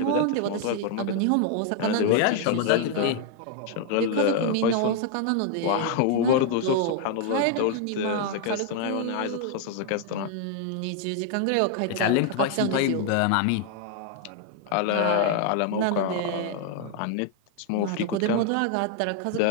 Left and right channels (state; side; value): different; both; correlation 0.00